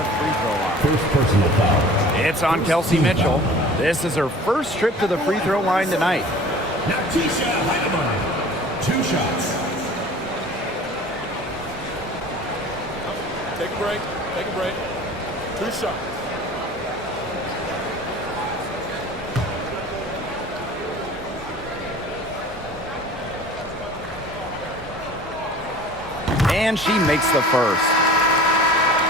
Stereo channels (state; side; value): normal; both; correlation 0.44